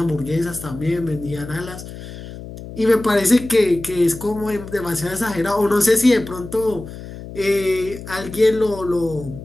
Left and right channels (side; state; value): left; noise; hum, 13 dB below the sound